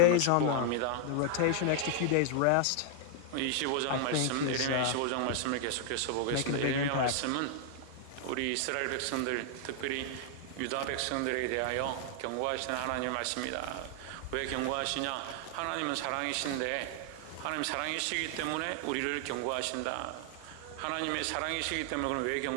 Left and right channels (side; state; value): both; different; correlation 0.00